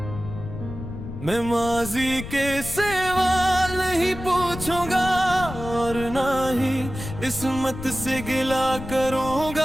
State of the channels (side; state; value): left; noise; rumble, 10 dB below the sound